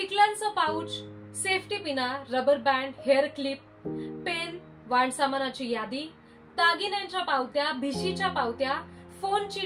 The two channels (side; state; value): both; identical; correlation 1.00